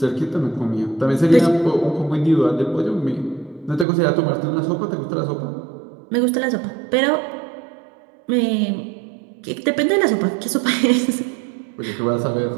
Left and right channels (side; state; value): left; drops out; at 3.9 s